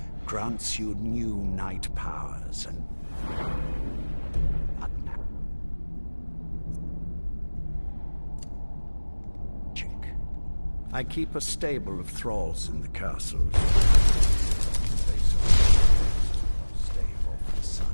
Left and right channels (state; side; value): inverted; both; correlation -1.00